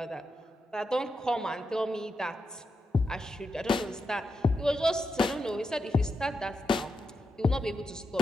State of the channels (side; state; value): both; normal; correlation 0.86